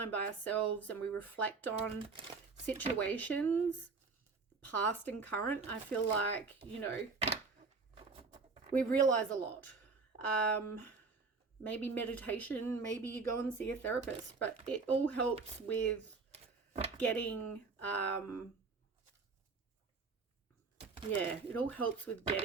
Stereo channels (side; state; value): left; quieter; 4.4 dB